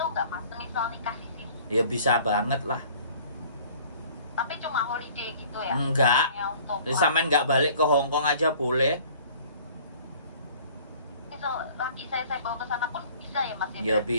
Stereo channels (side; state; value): both; inverted; correlation -0.51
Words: nggak mas? Misal nikah di sini, Ya bisa banget lah. tapi cuma holiday gitu ya? Enggak. Hanya untuk Sampean nggak balik ke Hong Kong aja boleh. misal laki saya bawa ke sana pun bisa ya mas? Ya Berarti